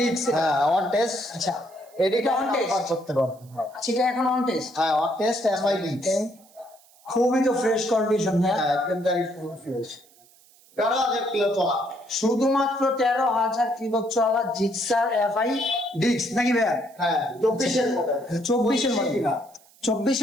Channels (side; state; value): right; noise; hiss, 28 dB below the sound